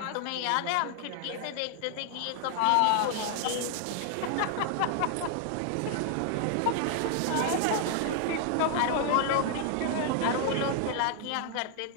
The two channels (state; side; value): different; both; correlation 0.00